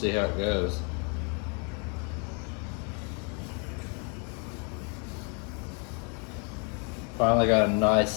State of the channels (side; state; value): right; quieter; 36.3 dB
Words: how it goes. Finally got a nice